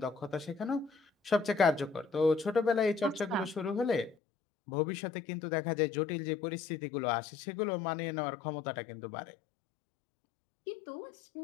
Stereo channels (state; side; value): drops out; right; at 4.2 s